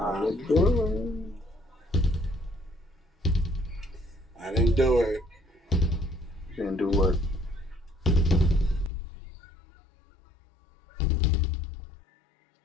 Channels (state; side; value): drops out; right; at 8.9 s